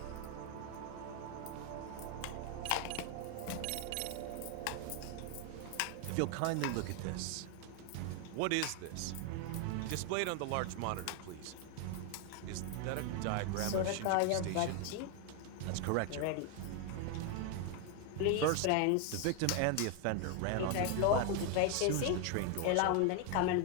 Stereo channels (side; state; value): both; different; correlation 0.01